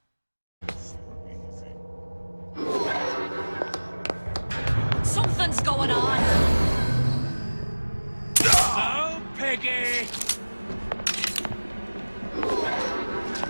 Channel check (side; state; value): both; inverted; correlation -1.00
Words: Something's going on. Oh, Piggy!